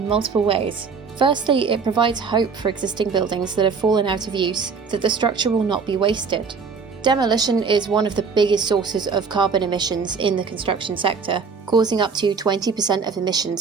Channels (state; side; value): quieter; left; 5.3 dB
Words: multiple ways. Firstly, it provides hope for existing buildings that have fallen out of use, that the structure will not be wasted. Demolition is one of the biggest sources of carbon emissions in the construction sector, causing up to 20% of